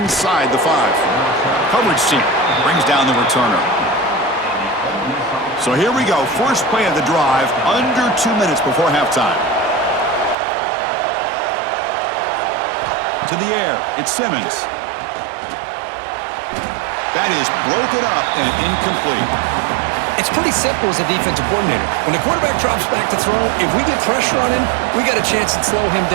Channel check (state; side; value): drops out; left; at 10.4 s